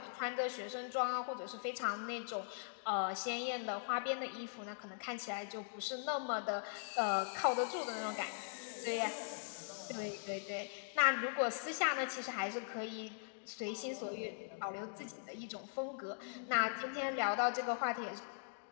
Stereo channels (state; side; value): silent; right; digital silence